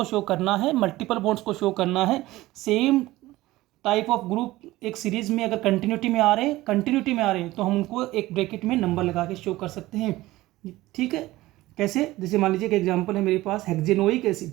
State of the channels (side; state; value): left; quieter; 17.7 dB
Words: शो करना है, मल्टीपल बॉन्ड्स को शो करना है। सेम टाइप ऑफ ग्रुप एक सीरीज में अगर कंटिन्यूटी में आ रहे हैं तो हम उनको एक ब्रैकेट में नंबर लगा के शो कर सकते हैं। ठीक है, कैसे, जैसे मान लीजिए एक एग्जांपल है मेरे पास हेक्जेनोइक एसिड,